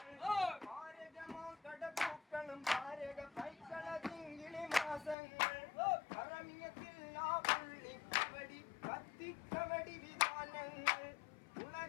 ഭാരകമാം കടപ്പൂക്കളും ഭാരക പൈക്കള തിങ്കിളി മാസങ്ങൾ കറമിയത്തില്ലാ പുള്ളിക്കവടി കത്തിക്കവടി വിധാനങ്ങൾ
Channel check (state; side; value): drops out; right; at 5.2 s